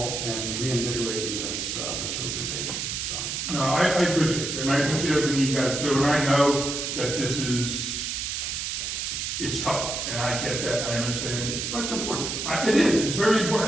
and reinvigorating this organization. So. No, I appreciate it, and I appreciate everything you guys do, and I know that it's tough, and I get that, I understand it. But it's important. It is, it's very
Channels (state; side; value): noise; right; hiss, 3 dB below the sound